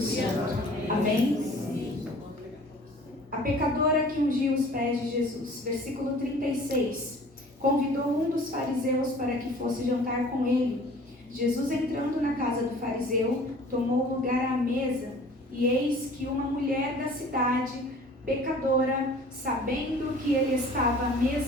Amém? A pecadora que ungiu os pés de Jesus. Versículo 36. Convidou um dos fariseus para que fosse jantar com ele. Jesus, entrando na casa do fariseu, tomou lugar à mesa. E eis que uma mulher da cidade, pecadora, sabendo que ele estava à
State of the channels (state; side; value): normal; both; correlation 0.48